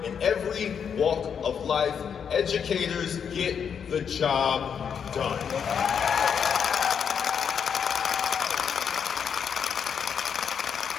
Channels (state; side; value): quieter; right; 7.3 dB